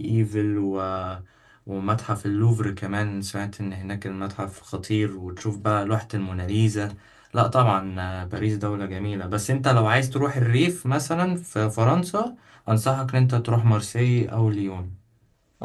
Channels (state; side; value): identical; both; correlation 1.00